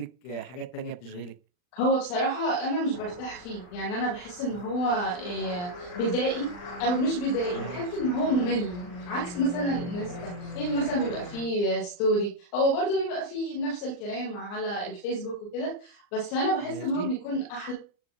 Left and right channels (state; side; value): late; right; 39 ms